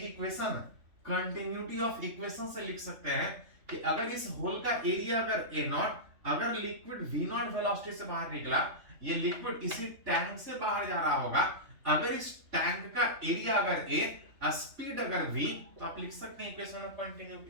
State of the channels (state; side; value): late; left; 3.4 ms